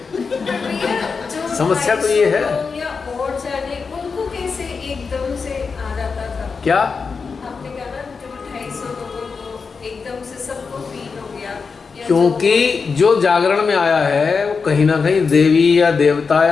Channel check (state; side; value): quieter; right; 5.1 dB